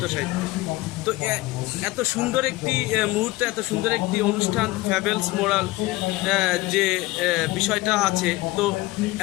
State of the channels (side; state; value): right; quieter; 19.8 dB